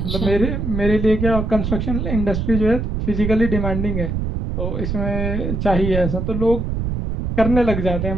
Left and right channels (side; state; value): right; noise; rumble, 2 dB below the sound